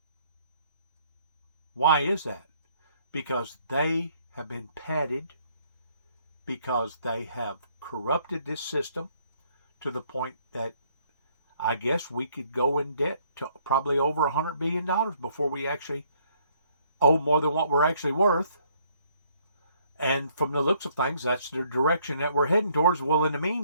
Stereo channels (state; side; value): inverted; both; correlation -0.66